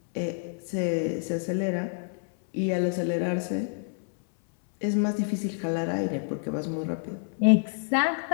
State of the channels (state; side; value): silent; right; 59 dB below the other